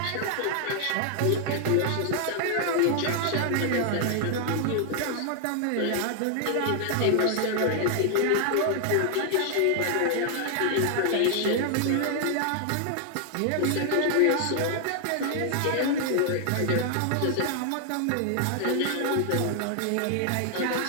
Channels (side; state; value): both; different; correlation 0.00